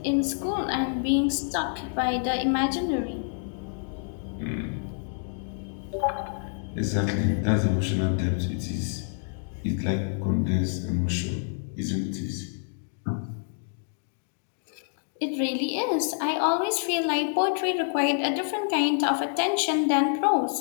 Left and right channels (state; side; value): silent; right; digital silence